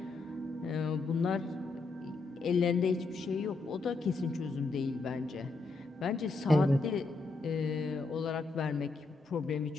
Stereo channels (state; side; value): quieter; right; 3.7 dB